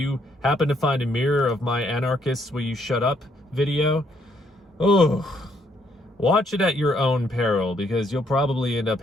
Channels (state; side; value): normal; both; correlation 0.70